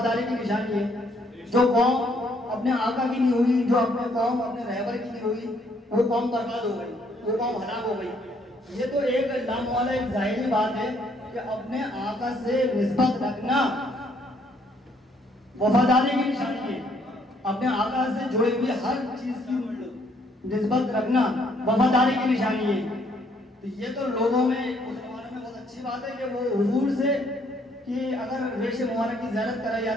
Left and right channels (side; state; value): both; normal; correlation 0.68